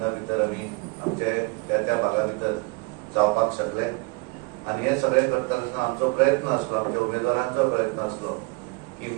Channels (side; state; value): left; quieter; 27.3 dB